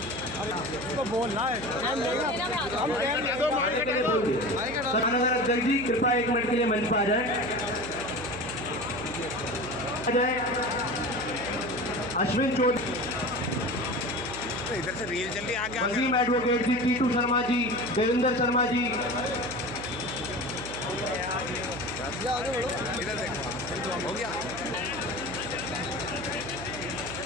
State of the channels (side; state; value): right; noise; hum, 11 dB below the sound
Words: बोलना है अध्यक्ष जी कृपया 1 मिनट के लिए मंच पर आ जाए। अश्विन चौधरी, इधर से रील चल रही है आगे। वसीम एडवोकेट जी, टीटू शर्मा जी, देवेंद्र शर्मा जी। इधर देखो,